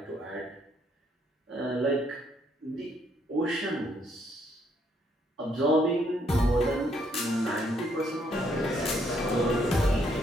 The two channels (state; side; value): normal; both; correlation 0.71